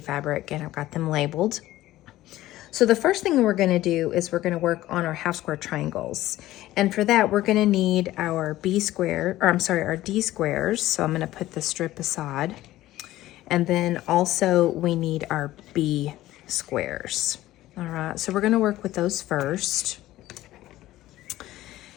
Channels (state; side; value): quieter; right; 15.6 dB